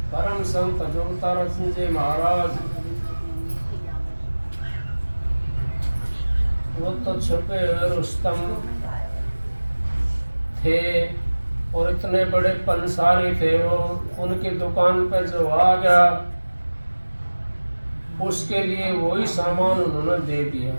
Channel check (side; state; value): both; inverted; correlation -1.00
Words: परम संत जोगतारा सिंह जी महाराज वो तो छुपे हुए रुस्तम थे और इतने बड़े पंसारी थे वो। उनकी दुकान पर जो आ गया उसके लिए वही सामान उन्होंने दे दिया,